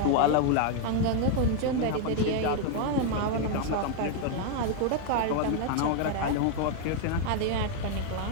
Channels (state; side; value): different; both; correlation 0.00